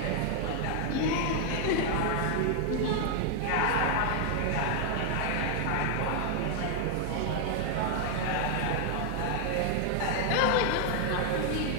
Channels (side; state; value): both; different; correlation 0.00